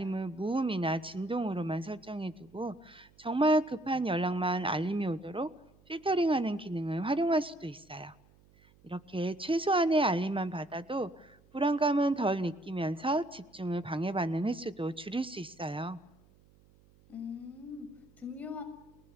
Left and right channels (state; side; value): noise; right; hum, 29 dB below the sound